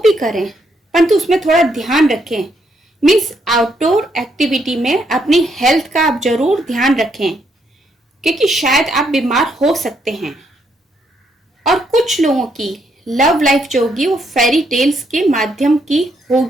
करें परंतु उसमें थोड़ा ध्यान रखें। मीन्स आउटडोर एक्टिविटी में अपनी हेल्थ का आप जरूर ध्यान रखें, क्योंकि शायद आप बीमार हो सकते हैं। और कुछ लोगों की लव लाइफ जो होगी वो फेरी टेल्स के माध्यम की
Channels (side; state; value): both; normal; correlation 0.75